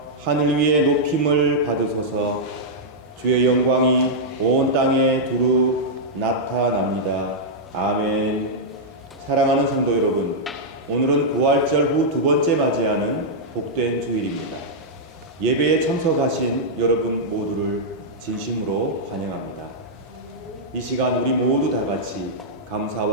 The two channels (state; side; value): normal; both; correlation -0.08